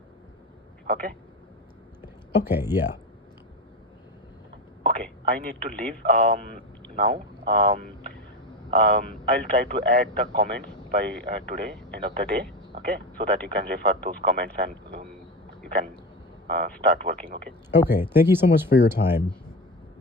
Okay. Okay. Yeah. Okay, I need to leave now. I'll try to add the comments by today, end of the day. Okay, so that you can refer those comments and you can start working. Okay. Okay. Thank you so much for your time.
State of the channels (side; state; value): both; normal; correlation 0.21